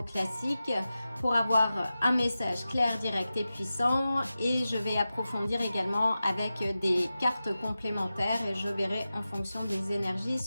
classique pour avoir un message clair, direct et puissant, et je vais approfondir également avec des cartes complémentaires et je verrai en fonction des énergies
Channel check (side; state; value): both; inverted; correlation -0.94